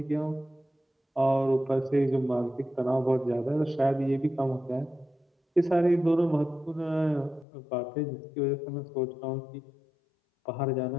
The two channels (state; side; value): drops out; right; at 7.5 s